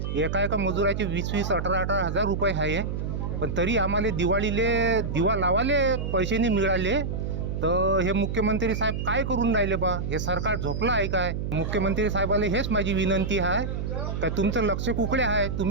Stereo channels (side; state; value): right; noise; hum, 3 dB below the sound